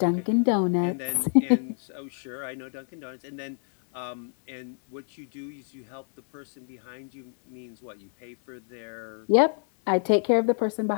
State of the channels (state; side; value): silent; right; 59 dB below the other